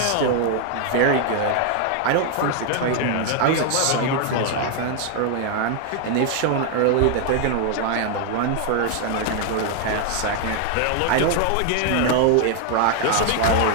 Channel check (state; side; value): different; both; correlation 0.00